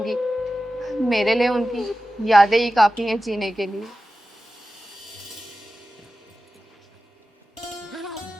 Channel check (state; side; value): normal; both; correlation 0.94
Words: मेरे लिए उनकी यादें ही काफ़ी हैं जीने के लिए।